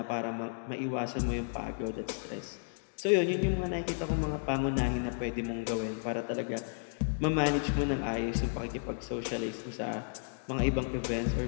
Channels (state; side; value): silent; right; digital silence